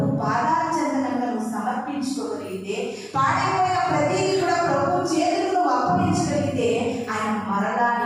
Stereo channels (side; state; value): both; identical; correlation 1.00